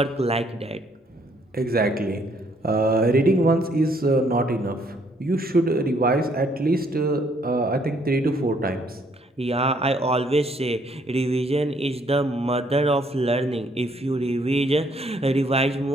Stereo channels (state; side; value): normal; both; correlation 0.67